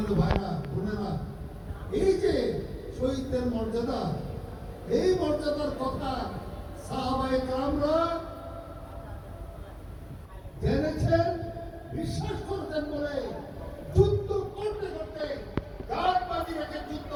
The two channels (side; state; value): both; identical; correlation 1.00